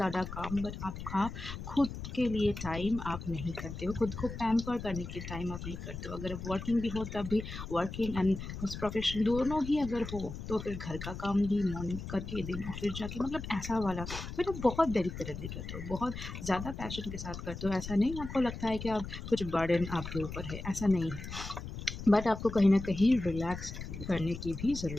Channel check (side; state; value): left; noise; rumble, 9 dB below the sound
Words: काम, बट आपका खुद के लिए टाइम आप नहीं करते हो, खुद को पैम्पर करने के टाइम आप नहीं करते हो। अगर वर्किंग भी हो तब भी वर्किंग एंड प्रोफेशन दोनों ही अगर हो तो फिर घर का काम भी मॉर्निंग करके देना, फिर जाके मतलब ऐसा वाला मतलब बहुत डेडिकेटेडली करते हो, बहुत ज़्यादा पैशन के साथ करते हो। ऐसा नहीं आपको लगता है कि आप कुछ बर्डन आपके ऊपर है, ऐसा नहीं है। बट आपको कहीं ना कहीं रिलैक्स करने की भी